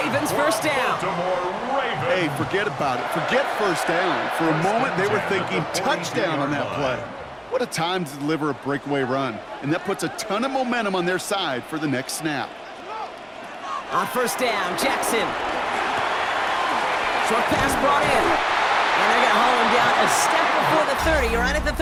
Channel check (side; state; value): both; identical; correlation 1.00